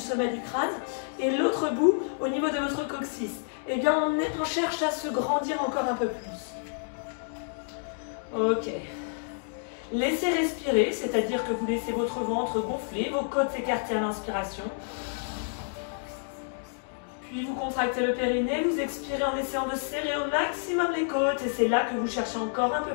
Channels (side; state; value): right; silent; digital silence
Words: du crâne et l'autre bout au niveau de votre coccyx. Eh bien, on cherche à se grandir encore un peu plus. Ok. Laissez respirer, c'est-à-dire que vous laissez votre ventre gonfler, vos côtes s'écarter à l'inspiration. Puis vous contractez le périnée, vous expirez en essayant de serrer au maximum les côtes et c'est là que vous cherchez encore un peu